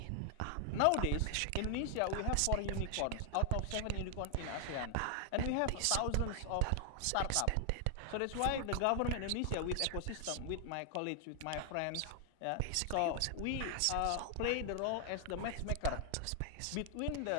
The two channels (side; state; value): both; different; correlation 0.00